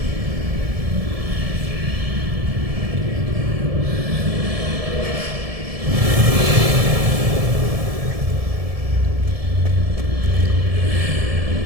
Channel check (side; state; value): left; late; 1.7 ms